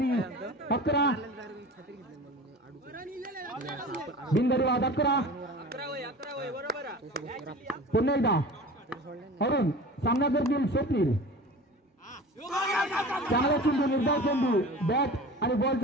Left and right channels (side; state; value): both; normal; correlation 0.37